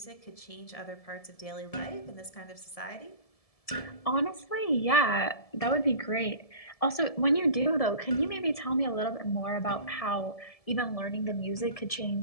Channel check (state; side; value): late; right; 1.7 ms